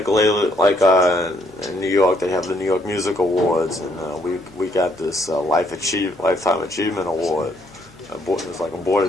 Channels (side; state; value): both; normal; correlation 0.70